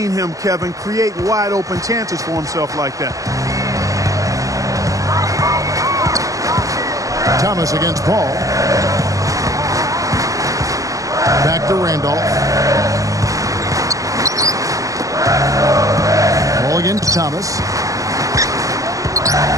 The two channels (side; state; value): left; late; 0.16 ms